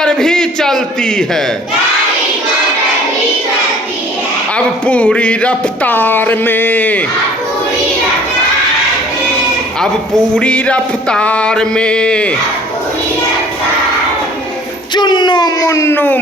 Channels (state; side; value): normal; both; correlation 0.52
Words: भी चलती है, अब पूरी रफ्तार में, अब पूरी रफ्तार में, चुन्नू मुन्नू